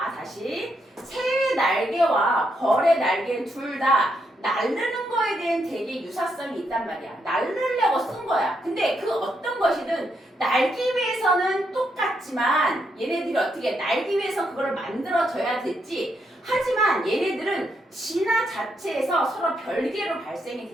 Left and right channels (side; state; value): both; normal; correlation 0.79